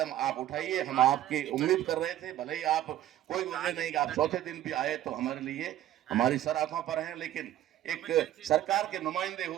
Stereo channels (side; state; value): left; quieter; 12.9 dB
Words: आप उठाइए। हम आपकी उम्मीद कर रहे थे, भले ही आप कोई वजह नहीं कि आप चौथे दिन भी आए तो हमारे लिए हमारी सर आंखों पर हैं, लेकिन एक सरकार के नुमाइंदे